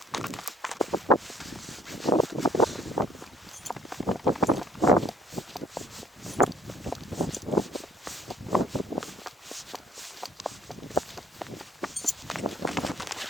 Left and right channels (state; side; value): normal; both; correlation 0.61